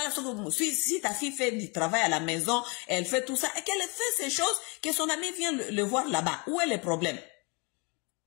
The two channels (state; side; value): quieter; right; 30.8 dB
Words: si ta fille fait du travail à la maison elle fait tout ça et qu'elle fait ces choses que son ami vient le voir là-bas où est le problème